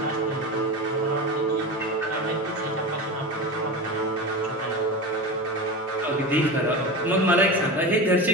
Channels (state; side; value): normal; both; correlation 0.25